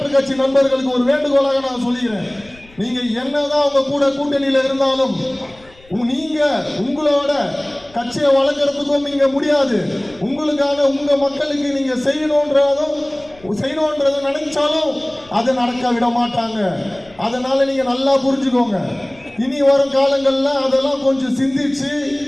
கட்சி நண்பர்களுக்கு ஒரு வேண்டுகோளாக நான் சொல்லிக்கிறேன், நீங்க என்னதான் உங்க கூட கூட்டணியில் இருந்தாலும் நீங்க உங்களோட கட்சியை வளர்க்கறதுக்கும் நீங்க முடியாது. உங்களுக்கான உங்க மக்களுக்கு நீங்க செய்யணும்ன்றத நினைச்சாலும் அதை நடக்க விட மாட்டாங்க. அதனால நீங்க நல்லா புரிஞ்சுக்கோங்க. இனி வரும் காலங்கள்ல அதெல்லாம் கொஞ்சம் சிந்திச்சு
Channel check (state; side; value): noise; left; rumble, 26 dB below the sound